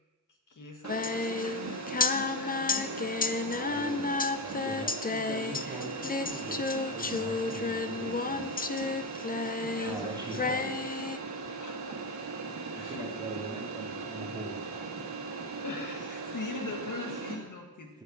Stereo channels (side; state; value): both; normal; correlation 0.12